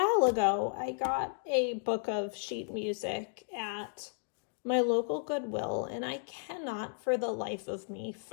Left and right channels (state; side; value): silent; right; digital silence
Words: ago, I got a book of sheet music at my local Goodwill, and I cannot for the life of me